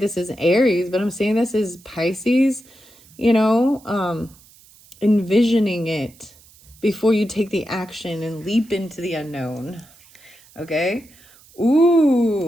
is Aries, but I'm saying this is Pisces, envisioning it before you take the action and leap into the unknown. Okay.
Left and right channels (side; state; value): right; noise; hiss, 26 dB below the sound